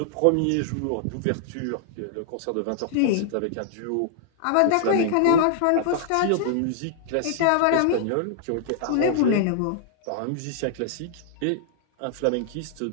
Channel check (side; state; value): both; different; correlation -0.01